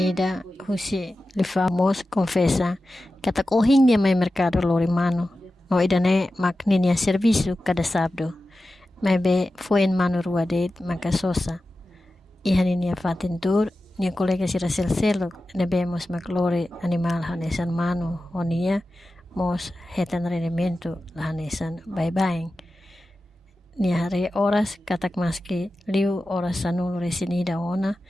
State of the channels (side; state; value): both; normal; correlation 0.94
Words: husi li famos confessa katak ohing dia mai mercado lori mano no idane makninia serviço cada sábado mai be foi en mano rua det makasosa ihaninia fatentur nia colega sira selo nebemos maklore animal hanesan mano onia mos hetan rendimento hanesan bye nia hare horas katak maski liu horas sanul resinida ona